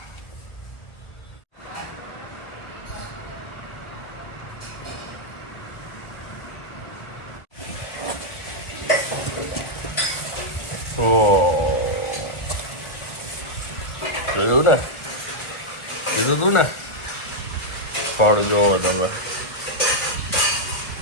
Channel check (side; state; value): right; late; 1.4 ms